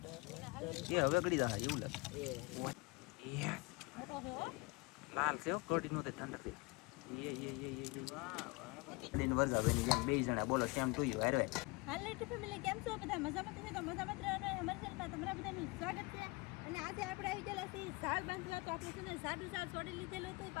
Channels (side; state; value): right; quieter; 26.5 dB